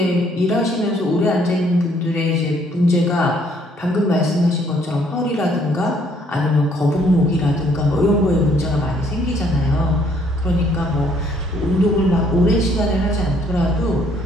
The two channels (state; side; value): normal; both; correlation 0.65